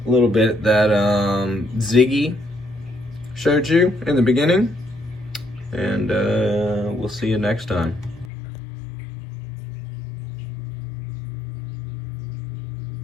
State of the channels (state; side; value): drops out; right; at 8.3 s